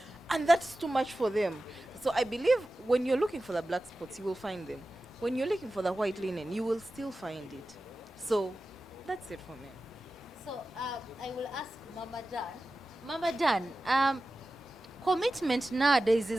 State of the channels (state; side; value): normal; both; correlation 0.94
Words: and that's too much for them. So I believe when you're looking for the black spots, you will find them. When you're looking for the white linen, you will still find it. So that's it for me. So I will ask Mama Dan. Mama Dan, commitment nowadays